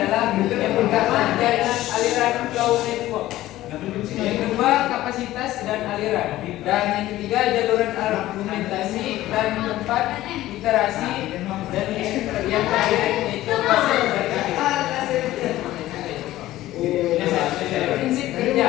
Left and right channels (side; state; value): right; quieter; 15.4 dB